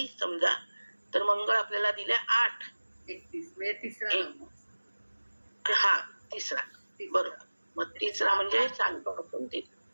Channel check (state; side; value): inverted; both; correlation -1.00